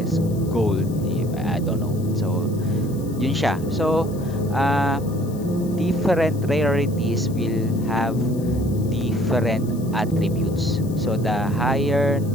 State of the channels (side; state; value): left; noise; hiss, 21 dB below the sound